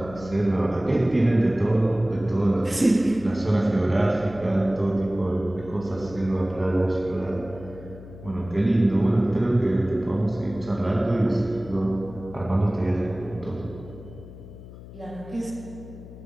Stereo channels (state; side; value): noise; left; hum, 16 dB below the sound